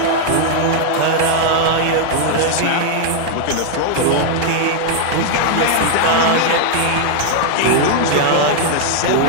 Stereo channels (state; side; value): different; both; correlation 0.00